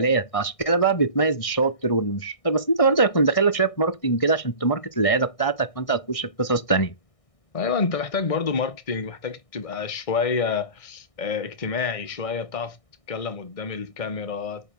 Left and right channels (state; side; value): late; right; 1.6 ms